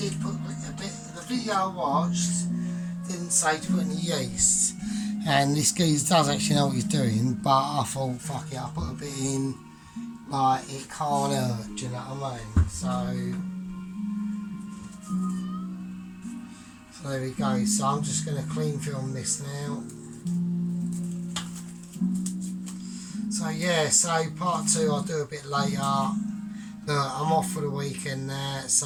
put a bit. The video I watched didn't say to put any yeast. And this geezer does actually know what he's doing, but I thought, fuck it, I'll put a bit in, like, it can't hurt, do you know what I mean? So there we go. So I'm just going to clean film this now. So yeah, so part 2 I'll do a bit later. Look, I'm off for the weekend there,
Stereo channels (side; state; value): both; identical; correlation 1.00